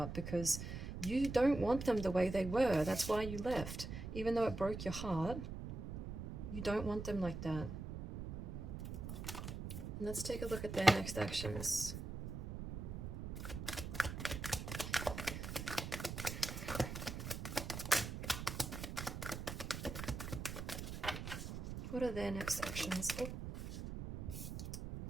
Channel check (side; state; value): right; noise; rumble, 6 dB below the sound